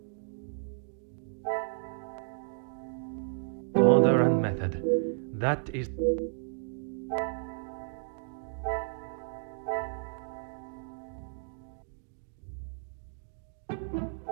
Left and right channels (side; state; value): left; silent; digital silence